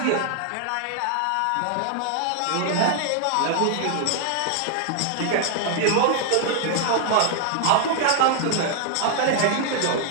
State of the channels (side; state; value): both; different; correlation 0.00